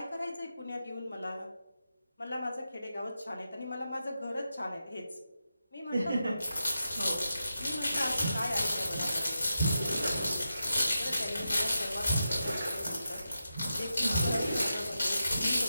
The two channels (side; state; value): both; inverted; correlation -0.88